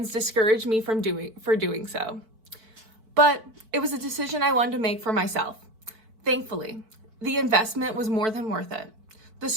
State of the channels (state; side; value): late; left; 4.5 ms